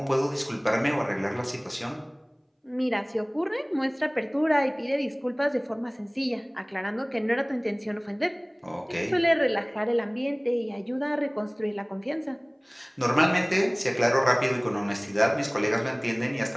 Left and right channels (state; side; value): identical; both; correlation 1.00